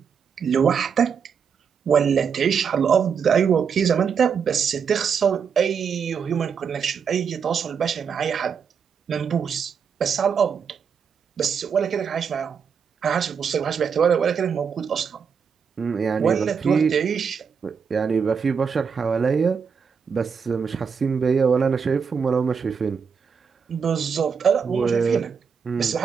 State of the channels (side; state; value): left; quieter; 6.5 dB